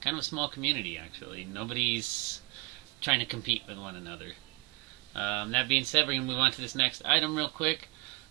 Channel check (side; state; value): left; quieter; 27.5 dB